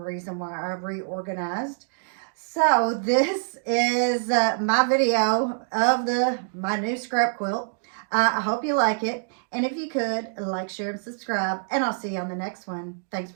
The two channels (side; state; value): left; silent; digital silence